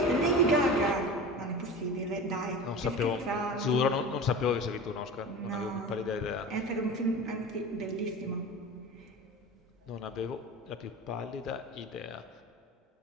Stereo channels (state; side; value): normal; both; correlation 0.32